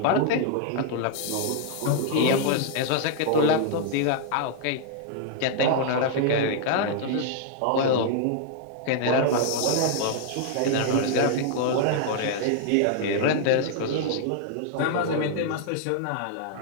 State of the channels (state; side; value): different; both; correlation -0.01